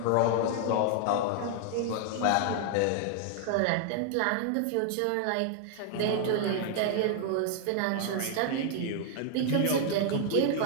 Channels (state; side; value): different; both; correlation 0.00